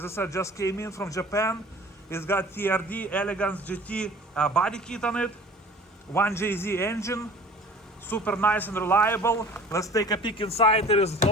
I said, just came in from Japan. It's got TRD Elegance GT body kit on it. 1JZ engine, super nice and reliable. Let's take a peek inside. It is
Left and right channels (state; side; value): normal; both; correlation 0.45